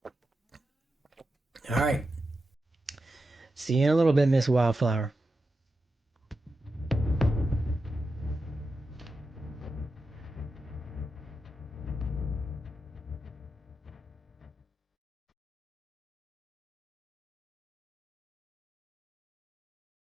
All right. See you in a little bit, Miss Wildflower.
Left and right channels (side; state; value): both; normal; correlation 0.89